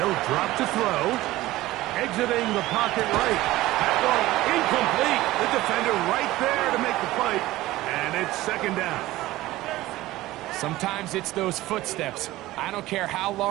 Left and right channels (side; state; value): left; quieter; 17.1 dB